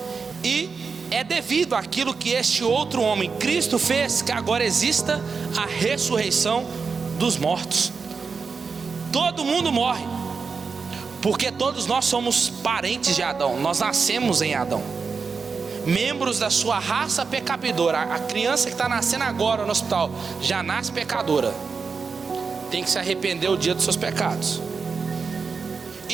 E é devido àquilo que este outro homem, Cristo, fez, que agora exista a ressurreição dos mortos. Todo mundo morre, porque todos nós somos parentes de Adão, nós nascemos em Adão, membros da sua raça pecadora. A criança que está nascendo agora no hospital já nasce pecadora, tem que se arrepender o dia dos seus pecados.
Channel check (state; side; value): quieter; left; 5.1 dB